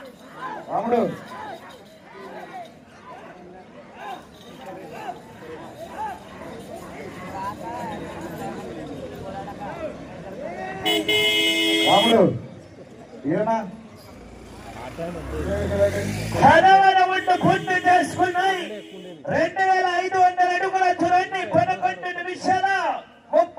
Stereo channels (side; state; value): both; identical; correlation 1.00